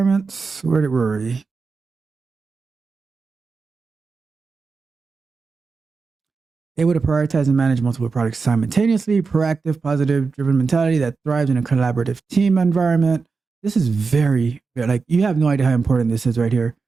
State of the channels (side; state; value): left; quieter; 4.7 dB